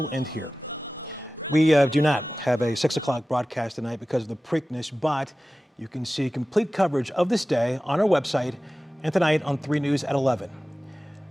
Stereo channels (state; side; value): normal; both; correlation 0.96